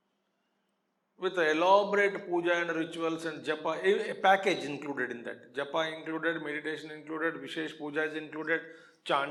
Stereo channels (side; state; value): both; identical; correlation 1.00